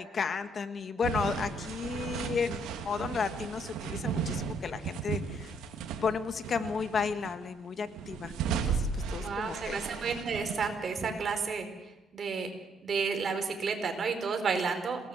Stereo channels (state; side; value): normal; both; correlation 0.69